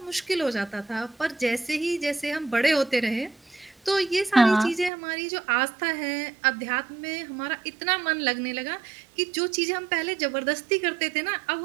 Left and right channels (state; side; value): drops out; left; at 4.9 s